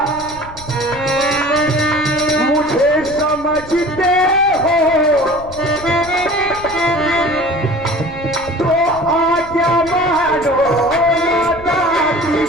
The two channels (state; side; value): noise; left; rumble, 18 dB below the sound